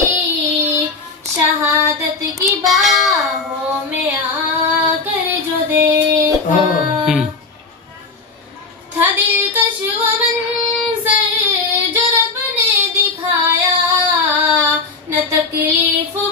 शहादत की बाहों में आकर जो देखा, था दिलकश वो मंजर जो रब ने दिखाया, न तकलीफ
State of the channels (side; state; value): right; quieter; 4.1 dB